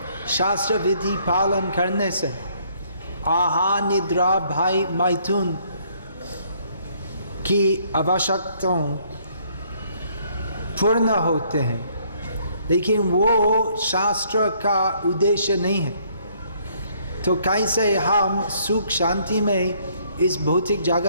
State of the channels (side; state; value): both; inverted; correlation -0.65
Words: शास्त्र विधि पालन करने से आहार निद्रा भय मैथुन की आवश्यकताएं पूर्ण होते हैं, लेकिन वो शास्त्र का उद्देश्य नहीं है। तो कैसे हम सुख शांति में इस भौतिक